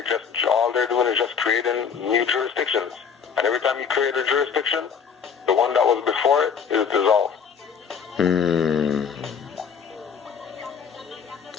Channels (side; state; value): right; quieter; 6.7 dB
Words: all they're doing is just creating new jurisdictions. And every time you create a jurisdiction, the one that was before it is dissolved.